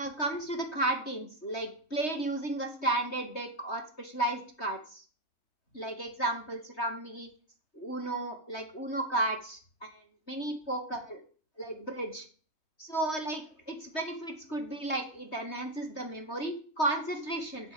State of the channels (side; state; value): right; late; 3.2 ms